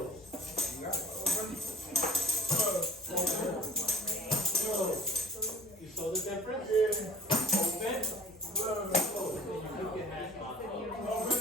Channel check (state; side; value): normal; both; correlation 0.50